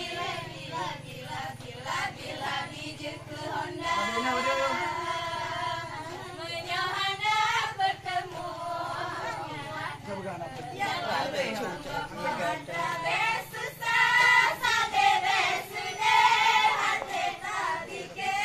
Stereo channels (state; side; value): identical; both; correlation 1.00